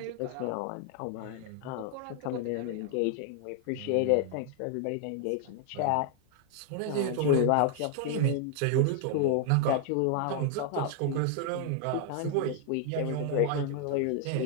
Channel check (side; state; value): both; different; correlation 0.00